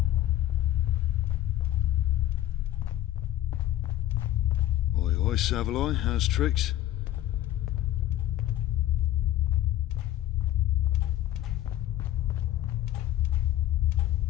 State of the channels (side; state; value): right; quieter; 13.5 dB